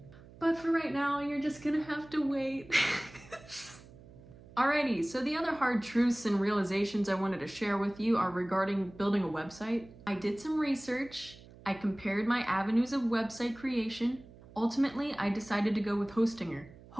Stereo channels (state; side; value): noise; right; hum, 21 dB below the sound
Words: But for right now, you're just gonna have to wait. Alrighty, so the other hard truths and realizations I wanted to share with you are regarding building a website. I did some research. I compared my avenues of website creation. Ultimately, I decided to go with Hostinger.